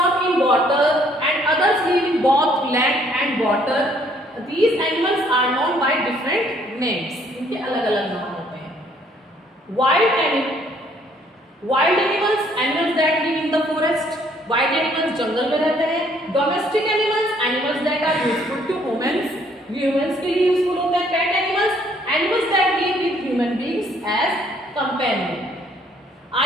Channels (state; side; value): normal; both; correlation 0.64